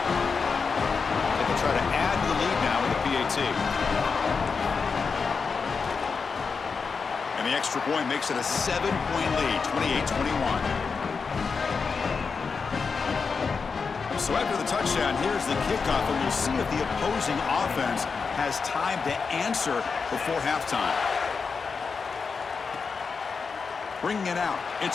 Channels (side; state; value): right; quieter; 5.2 dB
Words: They can try to add to the lead now with the PAT. And the extra point makes it a 7-point lead, 28-21. So after the touchdown, here's the kickoff, and we'll see if the opposing offense has time to answer before halftime. Bringing it out,